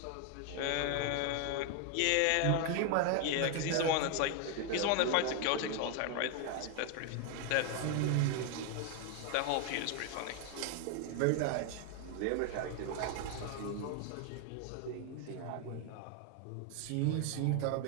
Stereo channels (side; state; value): both; different; correlation 0.01